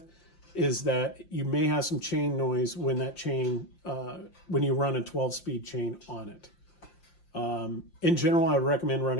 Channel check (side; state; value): right; late; 5.8 ms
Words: is that you may have some chain noise when that chain, when you run a 12-speed chain on it. In general, I would recommend